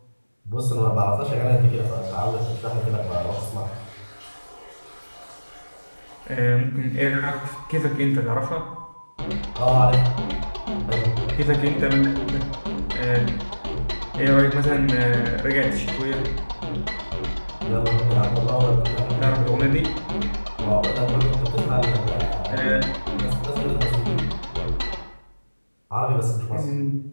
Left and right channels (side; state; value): both; inverted; correlation -1.00